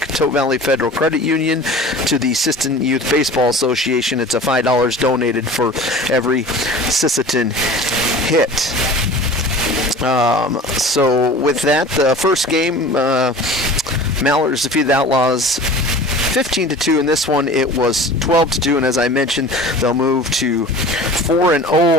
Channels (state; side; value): normal; both; correlation 0.40